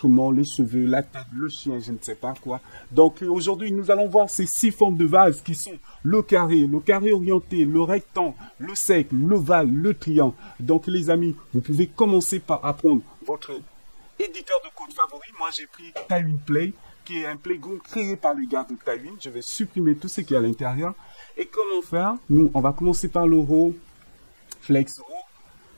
les cheveux, la tête, le chien, je ne sais pas quoi. Donc aujourd'hui, nous allons voir ces 6 formes de base qui sont le carré orienté, le rectangle, le cercle, l'ovale, le triangle. Donc les amis, vous pouvez commencer par apprendre votre éditeur de code favori. Moi, j'ai pris Tailwind Play, qui est un playground créé par les gars de Tailwind. Je vais supprimer tout ce qui est à l'intérieur. Et comment faire? Nous, on va commencer par le row, flex row.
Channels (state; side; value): inverted; both; correlation -1.00